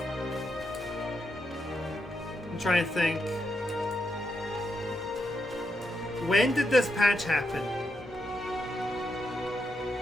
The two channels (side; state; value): both; normal; correlation 0.82